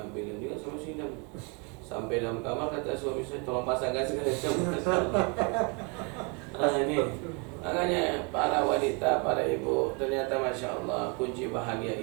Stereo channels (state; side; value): quieter; left; 33.0 dB